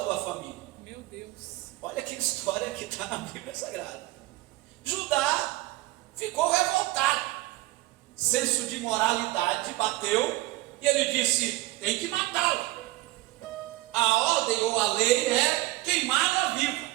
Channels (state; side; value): quieter; left; 18.6 dB